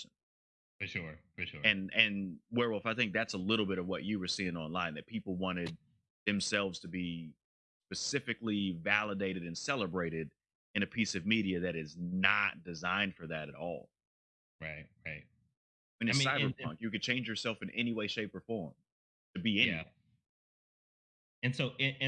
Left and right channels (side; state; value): both; identical; correlation 1.00